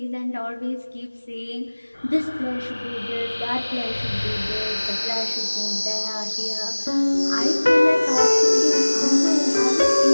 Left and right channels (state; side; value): inverted; both; correlation -1.00